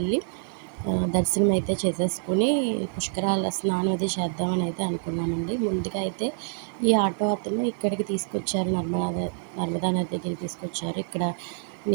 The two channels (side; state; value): left; silent; digital silence